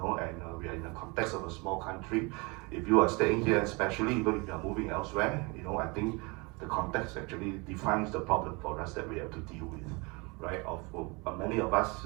we are in the context of a small country. If you are staying here, especially even if you are moving elsewhere, I think the context actually defines the problem for us that we have to deal with, right? Many of us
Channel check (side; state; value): left; quieter; 28.2 dB